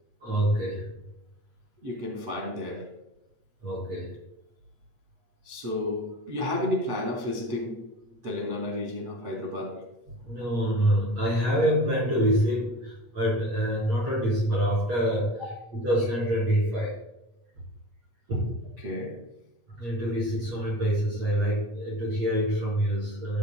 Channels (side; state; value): left; late; 8.5 ms